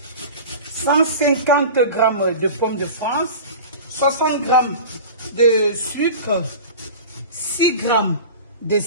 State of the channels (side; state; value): both; inverted; correlation -0.34